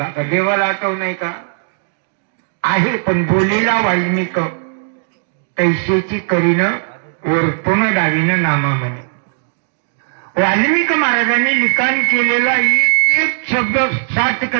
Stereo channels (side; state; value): left; silent; digital silence